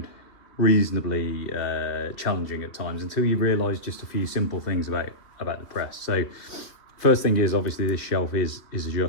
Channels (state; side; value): late; right; 3.0 ms